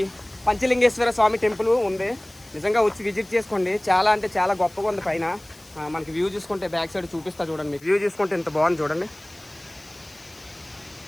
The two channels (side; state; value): left; noise; hiss, 25 dB below the sound